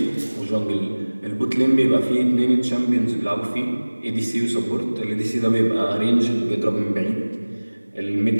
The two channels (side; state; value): both; inverted; correlation -1.00